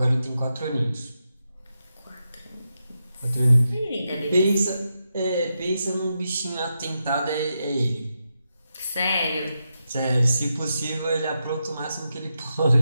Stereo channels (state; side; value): inverted; both; correlation -0.86